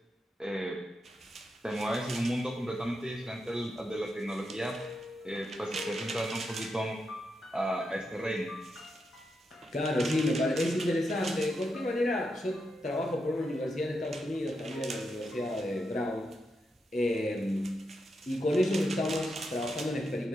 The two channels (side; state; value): both; normal; correlation 0.84